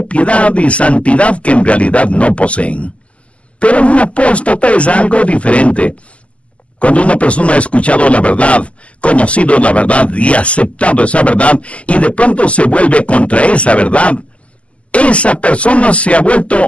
piedad y santidad que en realidad no poseen. Pero un apóstata es algo diferente. Cuando una persona ha escuchado la verdad, conocido la verdad y aceptado esa verdad, y de pronto se vuelve contra esa verdad, esa persona se ha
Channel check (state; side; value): late; right; 0.061 ms